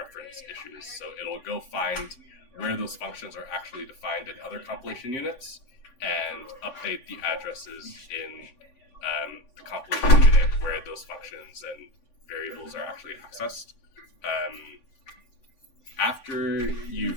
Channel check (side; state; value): right; late; 7.5 ms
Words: issues. So it'll go find where those functions are actually defined in other compilation units and update the addresses in the compilation unit where those functions and variables are actually accessed. After